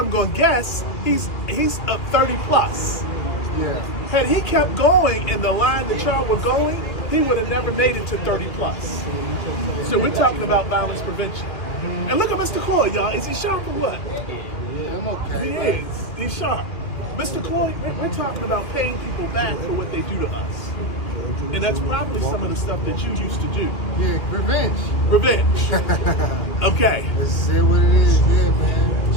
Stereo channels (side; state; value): right; late; 2.3 ms